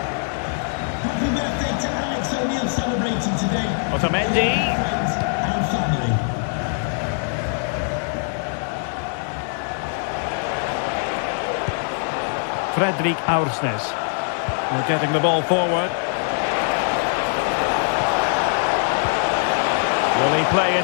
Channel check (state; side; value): silent; right; 62 dB below the other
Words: Happy birthday to Alex O'Neill celebrating today. Otamendi. Friends and family. Fredrik Aursnes. We're getting the ball forward. Will he play